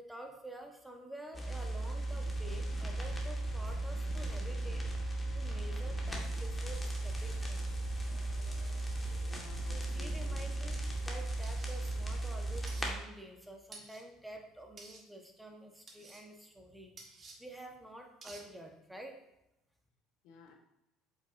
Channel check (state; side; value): normal; both; correlation 0.91